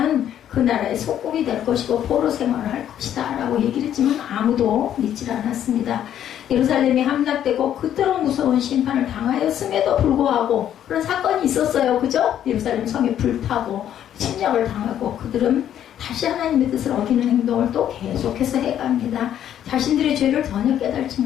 그 나라의 속국이 될 것이고 포로 생활을 할 것이다 라고 얘기를 했지만 아무도 믿질 않았습니다. 예루살렘이 함락되고 그토록 무서운 심판을 당하였음에도 불구하고 그런 사건이 있었어요. 그죠? 예루살렘 성이 불타고 침략을 당하고 그들은 다시 하나님의 뜻을 어기는 행동을 또 계속해서 해갑니다. 자신들의 죄를 전혀 깨달지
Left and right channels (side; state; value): right; quieter; 10.5 dB